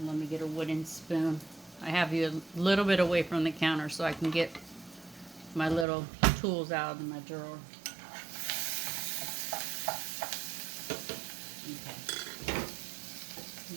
let me get a wooden spoon. I have you a little bit away from the counter so I can get my little tools out of my drawer. Okay.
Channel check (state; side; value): drops out; left; at 5.9 s